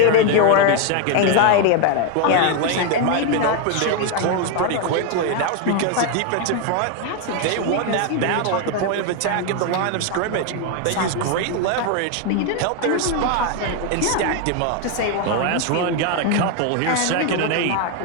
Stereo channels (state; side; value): different; both; correlation 0.01